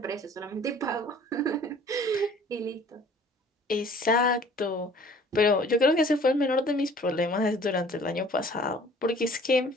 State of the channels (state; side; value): normal; both; correlation 0.51